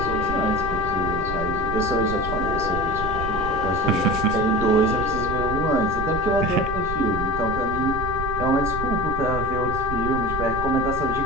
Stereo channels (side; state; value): right; noise; rumble, 6 dB below the sound